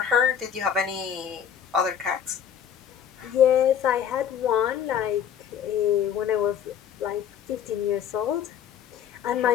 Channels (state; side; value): quieter; right; 8.7 dB